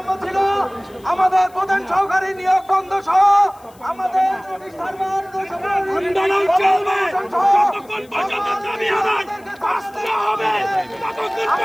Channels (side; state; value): left; noise; hiss, 29 dB below the sound